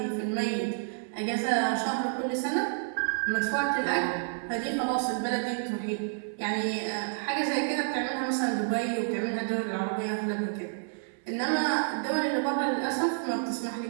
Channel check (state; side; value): silent; left; 58 dB below the other